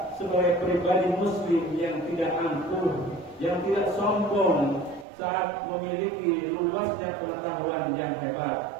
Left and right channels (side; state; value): left; drops out; at 5.1 s